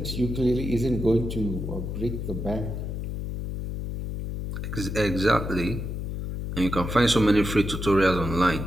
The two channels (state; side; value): noise; left; hum, 5 dB below the sound